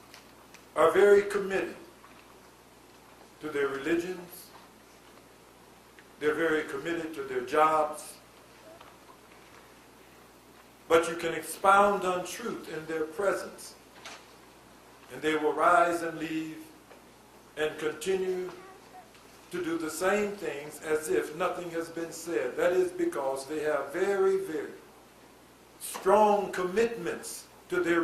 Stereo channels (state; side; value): identical; both; correlation 1.00